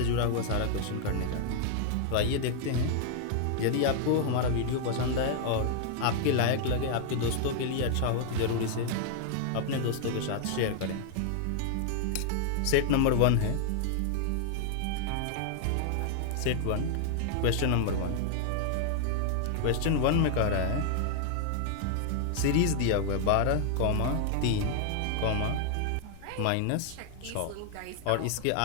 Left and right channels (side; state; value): both; different; correlation 0.00